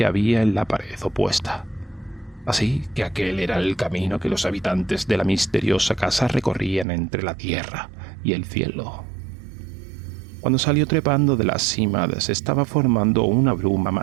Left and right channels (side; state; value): left; drops out; at 6.9 s